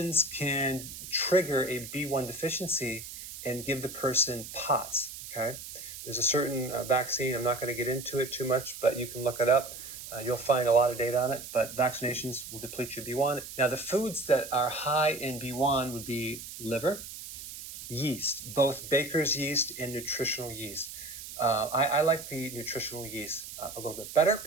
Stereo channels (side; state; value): right; noise; hiss, 11 dB below the sound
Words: can trigger a B1 deficiency and give the person POTS. Okay, there's a certain vaccine. I'm not going to get into it too much, but you can look it up. You'll find a lot of data on it, but vaccinations will deplete your B1. Now, the foods that are high in B1 would be liver, yeast, both baker's yeast and nutritional yeast. I like the nutritional yeast a little bit better